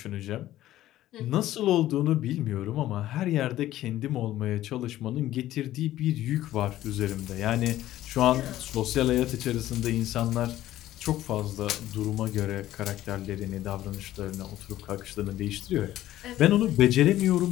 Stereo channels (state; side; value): quieter; right; 14.1 dB